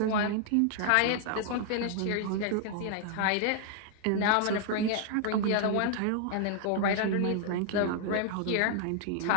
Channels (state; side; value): different; both; correlation -0.01